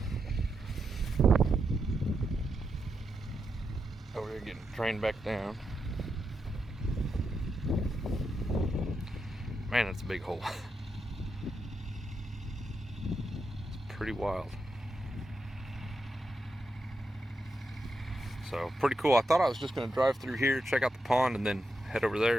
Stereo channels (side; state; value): both; normal; correlation 0.85